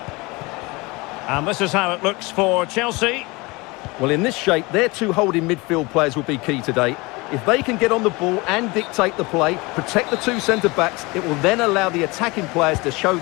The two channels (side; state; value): right; quieter; 24.6 dB